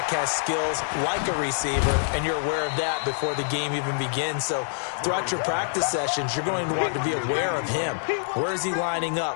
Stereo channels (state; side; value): silent; right; 61 dB below the other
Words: has skills like a receiver, and you're aware of that before the game even begins. So throughout your practice sessions, you're going to want to be aware of him. Where is he lining